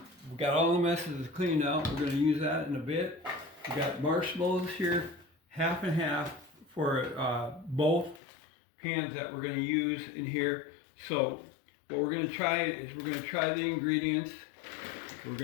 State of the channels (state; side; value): drops out; right; at 8.2 s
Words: we got all the messes cleaned out. We're going to use that in a bit. We got marshmallows here, half and half for both pans that we're going to use in here. So what we're going to try is we're going to try the ingredients. We're